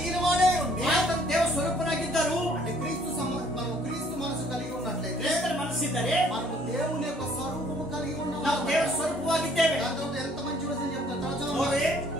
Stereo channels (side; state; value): both; normal; correlation 0.60